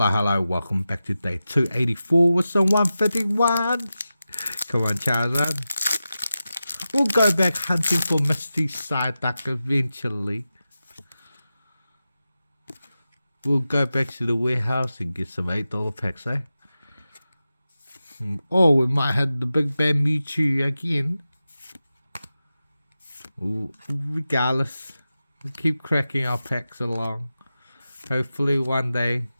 welcome back to day 284 with some 151s. Come on, Charizard. We'll go back hunting for Misty Psyduck eventually. We'll go back to the warehouse and get some $8 packs, eh? Oh, we might have the Big Bad Mewtwo again. Ooh, regardless, we'll keep cracking our packs along. Hopefully one day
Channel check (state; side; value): inverted; both; correlation -0.93